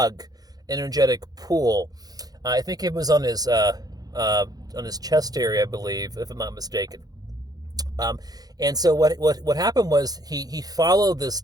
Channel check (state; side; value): late; left; 0.19 ms